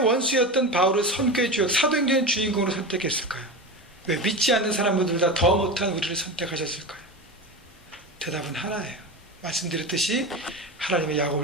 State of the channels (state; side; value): normal; both; correlation 0.24